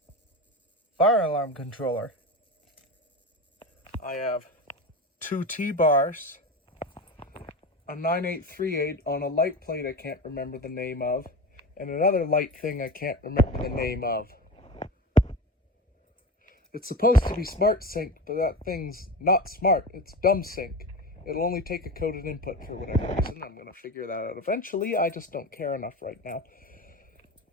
fire alarm controller. I have 2 T-bars, a 9838 on a light plate I can't remember the name of, and another light thing I can't remember the name of. It's supposed to be smart sync, but that thing's not smart. It's dumb sync. It'll only take a coded input for whatever reason. I'm going to figure that out eventually. I just don't care enough right now.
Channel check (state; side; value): normal; both; correlation 0.26